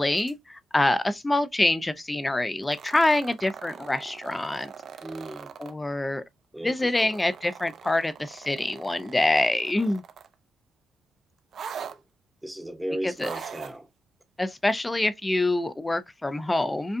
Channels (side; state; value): both; normal; correlation 0.96